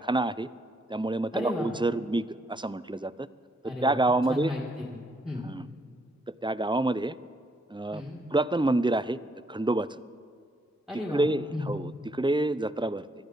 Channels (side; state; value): both; normal; correlation 0.72